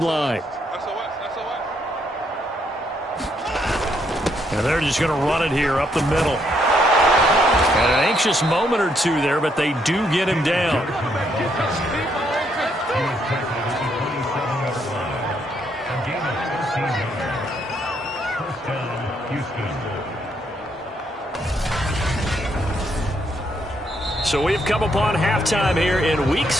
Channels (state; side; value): normal; both; correlation 0.74